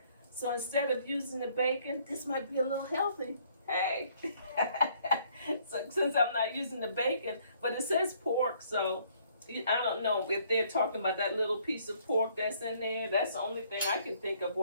So instead of using the bacon, this might be a little healthy. Hey, so since I'm not using the bacon, but it says pork, so I don't know if they're talking about that little piece of pork that's in there. That's the only thing I can think of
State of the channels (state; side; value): inverted; both; correlation -0.64